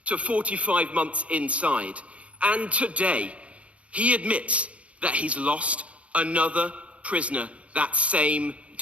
to 45 months inside. And today, he admits that he's lost another prisoner that same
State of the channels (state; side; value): late; left; 0.063 ms